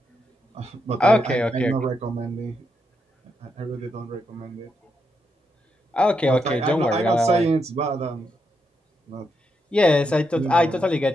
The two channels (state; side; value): normal; both; correlation 0.82